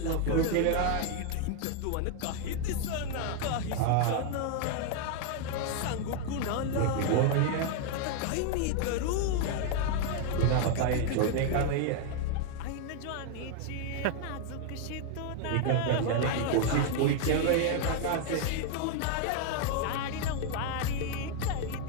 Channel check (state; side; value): different; both; correlation 0.00